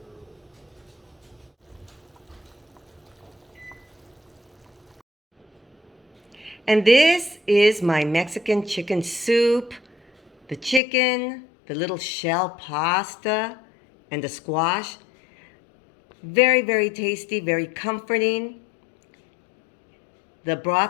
And this is my Mexican chicken soup, the chicken, the little shell pasta, and the squash. Very, very tasty, very comforting. The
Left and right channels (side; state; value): right; drops out; at 10.8 s